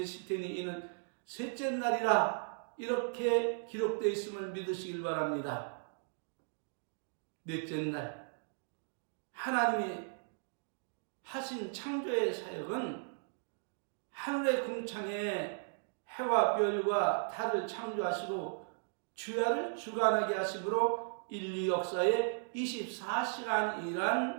테니 이는 셋째 날이라 이렇게 기록되어 있음을 믿으시길 바랍니다. 넷째 날 하나님이 하신 창조의 사역은 하늘의 궁창에 해와 별과 달을 창조하시고 주야를 주관하게 하심으로 인류 역사의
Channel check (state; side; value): silent; left; digital silence